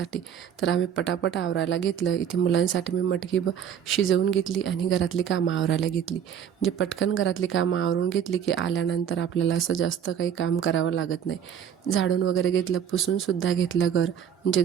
तर आम्ही पटापट आवरायला घेतलं. इथे मुलांसाठी मी मटकी शिजवून घेतली आणि घरातली कामं आवरायला घेतली. म्हणजे पटकन घरातली कामं आवरून घेतली की आल्यानंतर आपल्याला असं जास्त काही काम करावं लागत नाही. झाडून वगैरे घेतलं, पुसूनसुद्धा घेतलं घर. म्हणजे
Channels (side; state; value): left; quieter; 8.6 dB